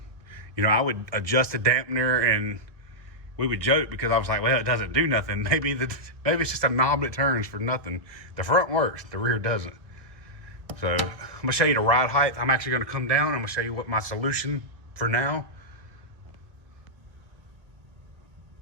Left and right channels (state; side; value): late; left; 1.6 ms